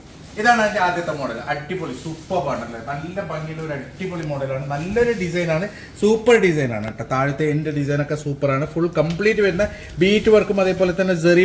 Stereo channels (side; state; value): both; identical; correlation 1.00